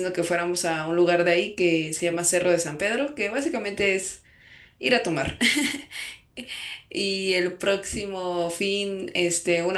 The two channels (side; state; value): both; identical; correlation 1.00